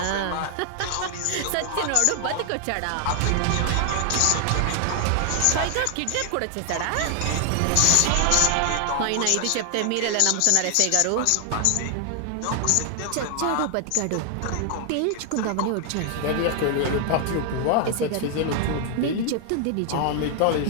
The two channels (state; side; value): different; both; correlation 0.00